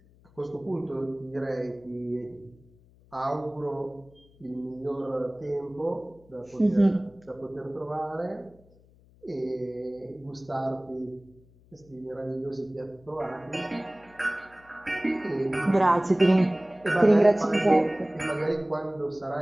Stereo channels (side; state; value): left; noise; hum, 28 dB below the sound